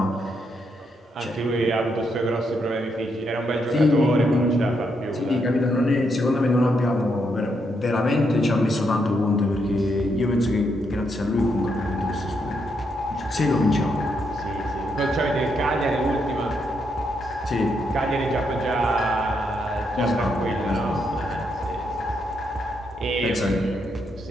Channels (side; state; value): both; normal; correlation 0.79